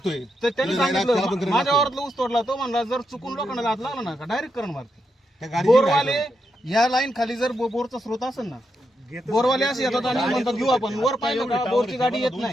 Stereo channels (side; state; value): both; normal; correlation 0.83